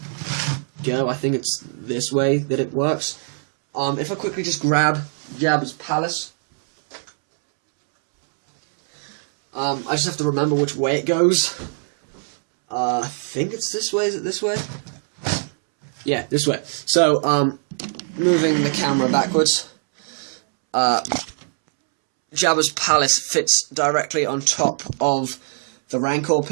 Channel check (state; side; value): silent; left; 65 dB below the other